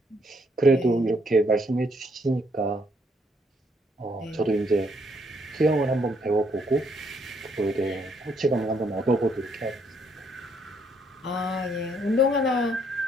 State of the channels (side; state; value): both; normal; correlation 0.71